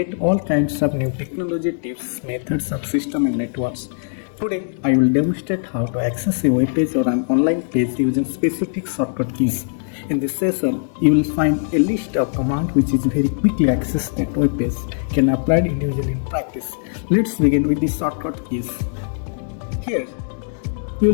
all kinds of new technology tips, methods of system and networks. Today I will demonstrate how to access a web page or an online page using specific shortcut keys. In this session, you will find a list of commands which is very quickly accessed that web page can apply individually in practice. Let's begin with the shortcut keys. Here you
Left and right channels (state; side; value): silent; right; digital silence